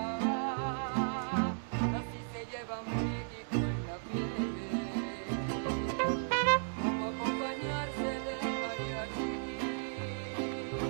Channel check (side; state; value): left; silent; digital silence